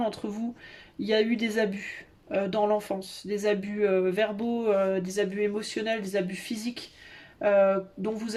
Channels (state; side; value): identical; both; correlation 1.00